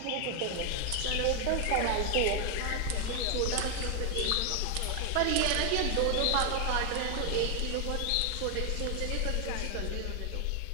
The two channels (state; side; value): different; both; correlation 0.00